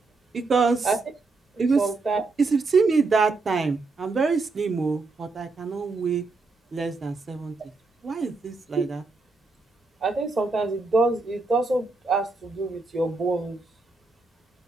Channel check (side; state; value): left; quieter; 3.8 dB